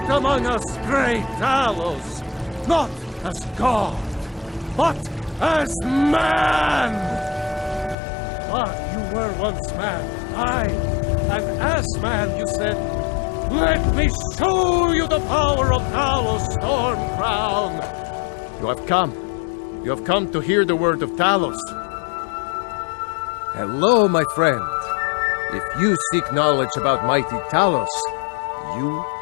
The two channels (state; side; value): drops out; right; at 8.0 s